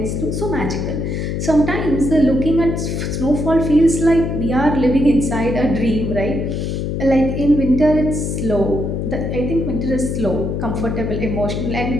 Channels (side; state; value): left; noise; hum, 2 dB below the sound